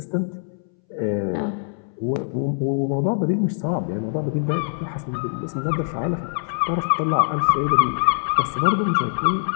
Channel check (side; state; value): right; silent; 62 dB below the other